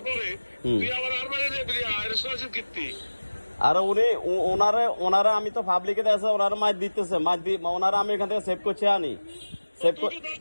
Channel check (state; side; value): inverted; both; correlation -1.00